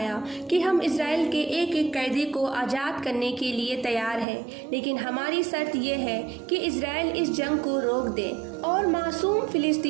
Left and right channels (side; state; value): left; drops out; at 4.2 s